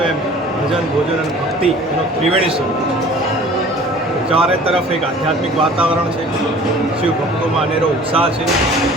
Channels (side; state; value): both; normal; correlation 0.47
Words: એમ ભજન ભોજન અને ભક્તિ એનો ત્રિવેણી સ્વરૂપ. ચારે તરફ એક આધ્યાત્મિક વાતાવરણ છે, શિવ ભક્તોમાં અનેરો ઉત્સાહ છે